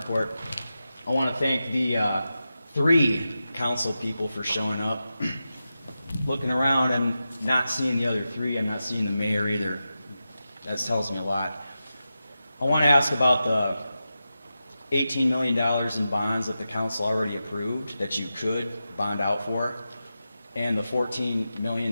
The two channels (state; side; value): inverted; both; correlation -0.91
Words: I want to thank the 3 council people for showing up. Looking around and not seeing the other 3, I'm not seeing the mayor either. That tells me a lot. I want to ask about the $18 million in bonds that the council already approved that you could bond out for, and the $14